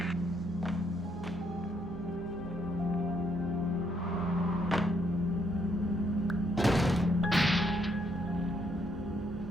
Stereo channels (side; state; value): both; normal; correlation 0.72